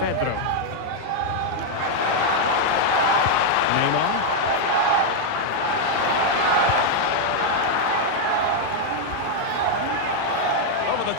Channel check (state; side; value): different; both; correlation 0.00